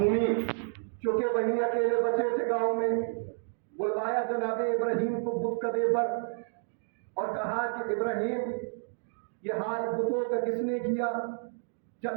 چونکہ وہی اکیلے بچے تھے گاؤں میں۔ بلوایا جناب ابراہیم کو بت کدے پر اور کہا کہ ابراہیم یہ حال بتوں کا کس نے کیا؟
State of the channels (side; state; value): left; silent; digital silence